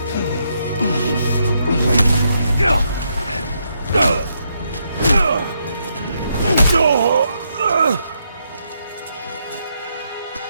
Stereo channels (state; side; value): inverted; both; correlation -0.78